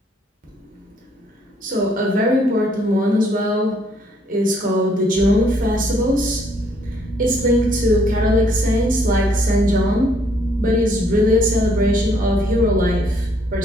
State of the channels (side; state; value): both; normal; correlation 0.67